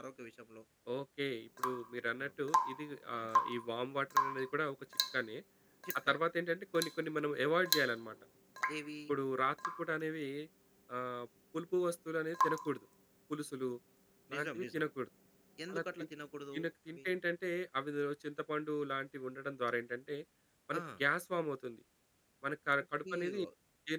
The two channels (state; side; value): identical; both; correlation 1.00